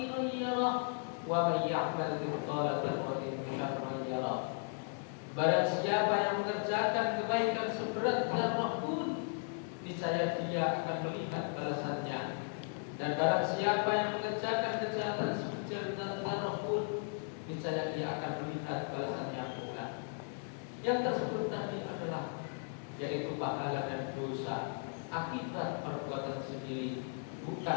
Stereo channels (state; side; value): silent; right; 54 dB below the other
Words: yarah wa man ya'mal mithqala dzarratin syarran yarah." Barang siapa yang mengerjakan kebaikan seberat zarrah pun, niscaya dia akan melihat balasannya. Dan barang siapa yang mengerjakan kejahatan sebesar zarrah pun, niscaya dia akan melihat balasannya pula. Yang tersebut tadi adalah yaitu pahala dan dosa akibat perbuatan sendiri,